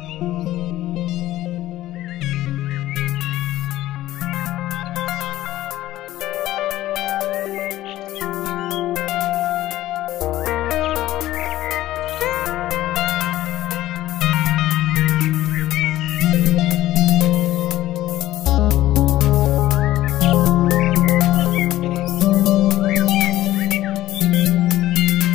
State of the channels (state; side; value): quieter; right; 14.9 dB